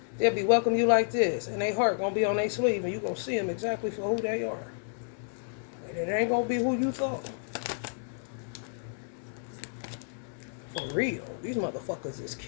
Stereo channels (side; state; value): right; silent; 57 dB below the other